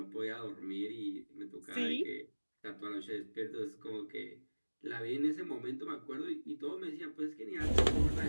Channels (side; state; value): both; inverted; correlation -1.00